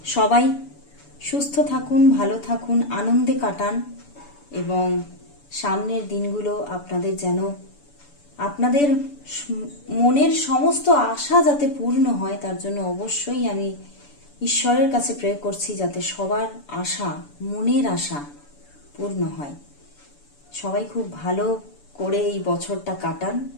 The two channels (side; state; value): right; late; 6.9 ms